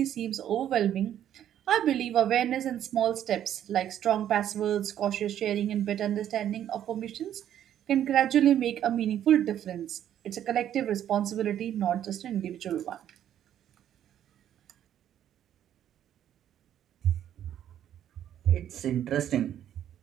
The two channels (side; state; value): left; quieter; 10.7 dB